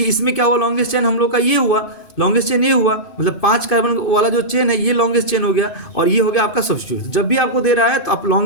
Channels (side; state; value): right; late; 2.5 ms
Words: इसमें क्या हुआ, लॉन्गेस्ट चेन हम लोग का ये हुआ, लॉन्गेस्ट चेन ये हुआ, मतलब 5 कार्बन वाला जो चेन है ये लॉन्गेस्ट चेन हो गया, और ये हो गया आपका सब्स्टिट्यूट। जब भी आपको दे रहा है तो आप